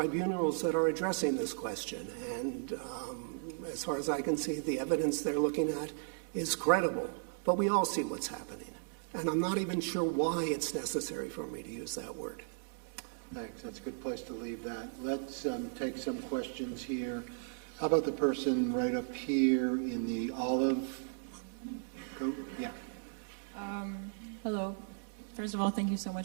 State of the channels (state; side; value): silent; left; digital silence